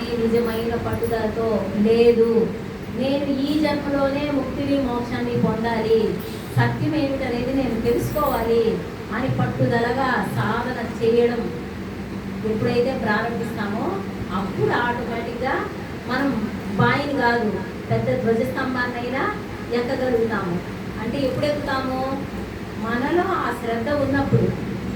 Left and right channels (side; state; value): both; identical; correlation 1.00